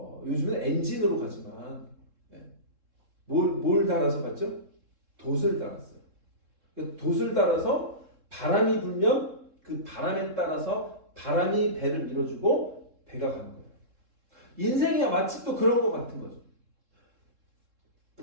요즘은 엔진으로 가지만 뭘 달아서 갔죠? 돛을 달았어요. 돛을 달아서 바람이 불면 그 바람에 따라서 바람이 배를 밀어주고 배가 가는 거예요. 인생이 마치 또 그런 것 같은 거죠.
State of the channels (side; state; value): left; late; 3.7 ms